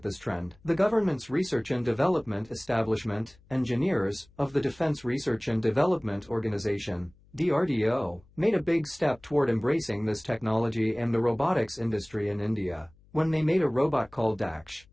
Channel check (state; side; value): noise; left; hum, 29 dB below the sound